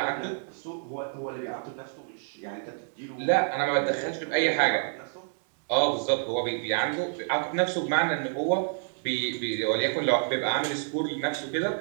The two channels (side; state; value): left; silent; digital silence